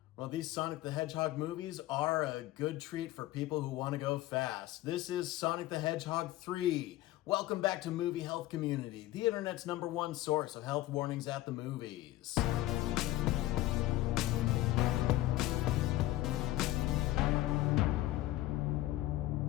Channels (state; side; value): quieter; right; 16.2 dB